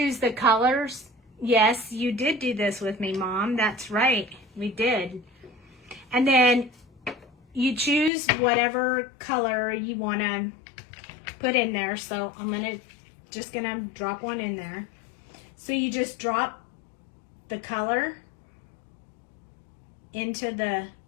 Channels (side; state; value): right; drops out; at 8.1 s